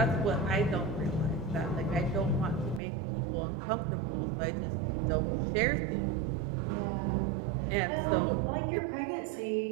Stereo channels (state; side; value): drops out; left; at 2.8 s